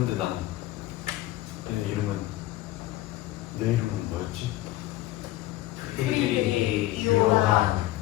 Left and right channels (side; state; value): right; quieter; 16.1 dB